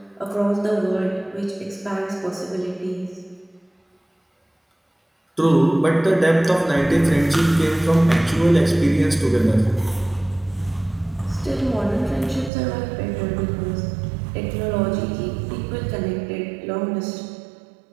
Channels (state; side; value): drops out; left; at 12.5 s